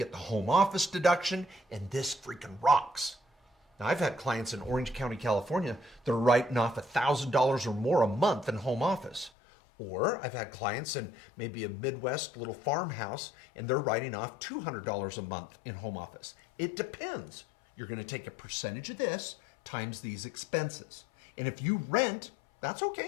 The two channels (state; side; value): drops out; right; at 9.3 s